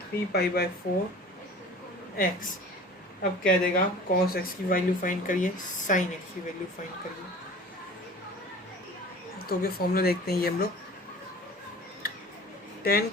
3π/4 x, अब क्या देगा, cos x की वैल्यू फाइंड करिए, sin x की वैल्यू फाइंड करिए। तो क्या फॉर्मूला देखते हैं, ये हम लोग tan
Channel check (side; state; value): both; normal; correlation 0.42